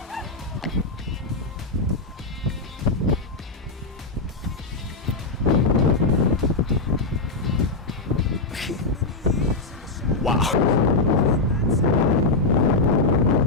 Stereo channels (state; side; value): quieter; right; 3.5 dB